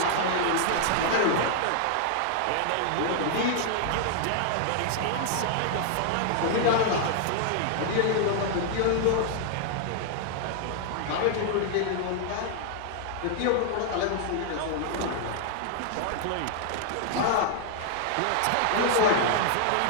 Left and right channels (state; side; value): different; both; correlation 0.00